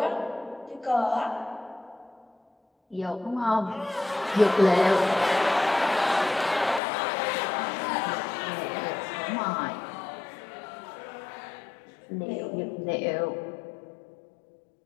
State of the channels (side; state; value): right; drops out; at 6.8 s